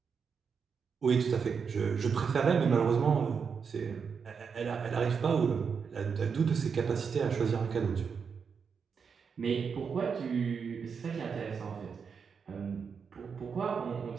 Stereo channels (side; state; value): left; quieter; 6.1 dB